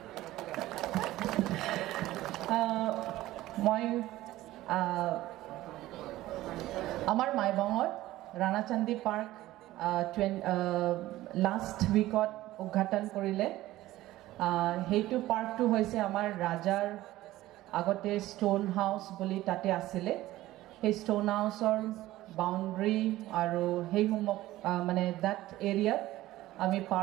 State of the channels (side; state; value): left; quieter; 16.1 dB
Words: মই আমার মাইবাঙত রানাচান্দি পার্ক লাস্ট উইকত উদ্ঘাটন কৰিলে। সেইটো পাৰ্কটো হৈছে আমাৰ ৰাজাৰ আগতে ষ্টোন হাউচ বুলি তাতে আছিলে। সেই ষ্টোন হাউচৰ বাউণ্ডৰী আৰু সেইসমূহ মানে দ্যাট এৰিয়াত আমি